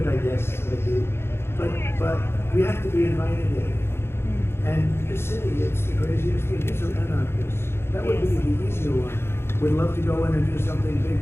I guess, but we have to be invited in. And the city, it's the craziest thing. These are anarchists. That would be the easier one. We'd love to go in and do something big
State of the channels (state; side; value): late; right; 0.12 ms